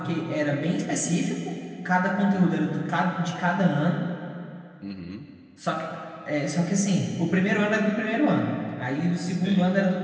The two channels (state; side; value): identical; both; correlation 1.00